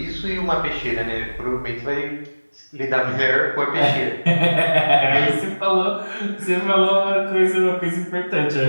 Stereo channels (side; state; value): both; inverted; correlation -1.00